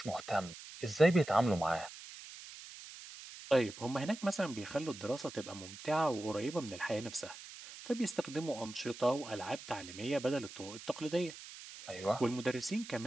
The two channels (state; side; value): noise; right; hiss, 14 dB below the sound